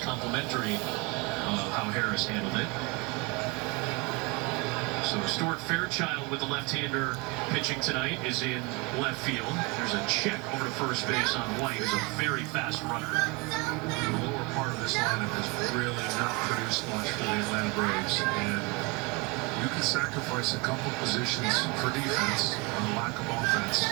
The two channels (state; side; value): quieter; left; 27.0 dB